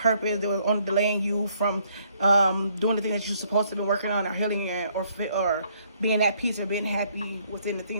They were only delaying you from doing the thing that you're supposed to be working on, or healing, or being at peace, or being happy within the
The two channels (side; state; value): both; inverted; correlation -0.67